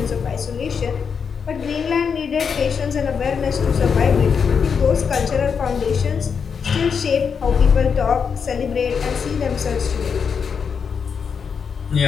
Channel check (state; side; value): quieter; right; 6.3 dB